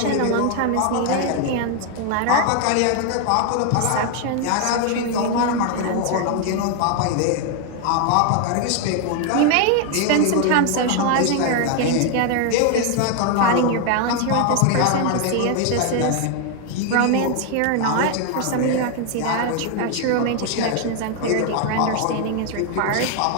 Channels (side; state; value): both; different; correlation 0.01